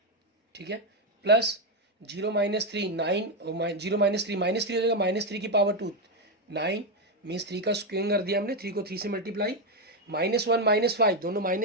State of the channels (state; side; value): normal; both; correlation 0.06